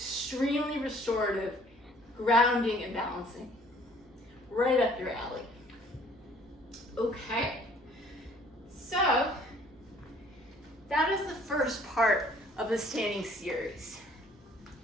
restorative, grounding and balancing. Right up your alley. Okay, so that is the first part of the standing series.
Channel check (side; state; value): both; normal; correlation 0.57